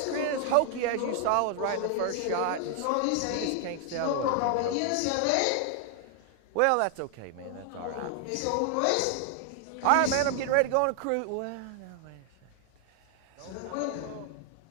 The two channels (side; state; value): both; different; correlation 0.00